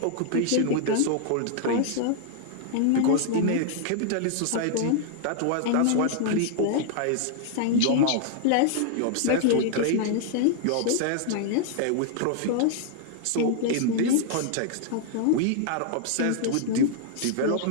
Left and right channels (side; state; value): both; different; correlation -0.01